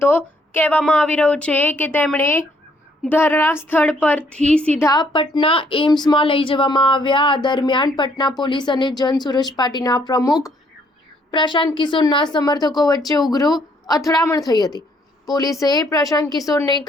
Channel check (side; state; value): both; normal; correlation 0.67